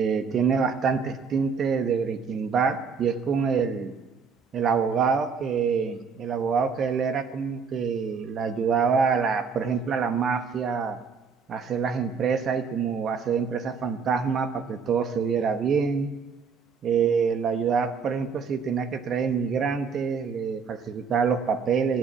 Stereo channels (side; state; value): left; quieter; 5.7 dB